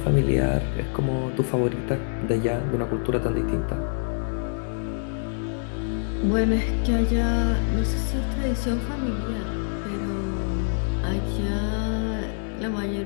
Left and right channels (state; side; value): silent; right; 61 dB below the other